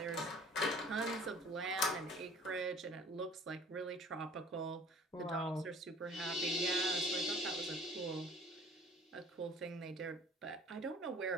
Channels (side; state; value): both; normal; correlation 0.49